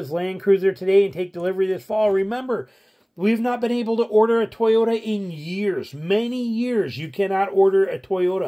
Land Cruiser today and take delivery this fall. Remember, we've not been able to order a Toyota in years. Many years. You cannot order a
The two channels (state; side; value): identical; both; correlation 1.00